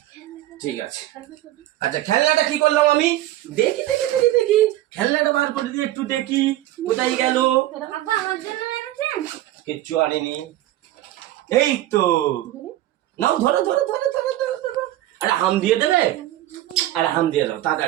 ঠিক আছে, আচ্ছা খেলনাটা কি করলাম আমি? দেখি দেখি দেখি দেখি খেলনাটা বার করে দিয়ে একটু দেখি কোথায় গেল। কিচ্ছু আনিনি। এই তো নাও, ধরো ধরো ধরো ধরো ধরো ধরো। আরে হাম দিয়ে দেবে? আরে হাম দিয়ে দাও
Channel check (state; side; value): quieter; left; 14.7 dB